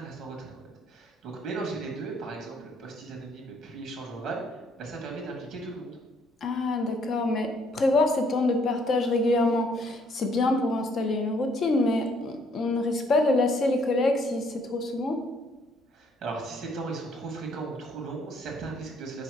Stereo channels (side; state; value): both; normal; correlation 0.66